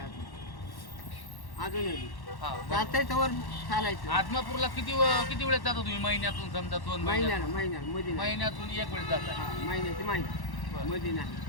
अजूनही. हा बरं. चालतंय वर चालायचं. आत्मापूरला किती वेळेस जाता तुम्ही? महिन्यातून समजा 2 महिन्यात? महिन्याला मध्ये नाही. महिन्यातून एक वेळेस जाता? हा, महिन्याची महिना बरं. मध्ये नाही.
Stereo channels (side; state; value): right; late; 1.1 ms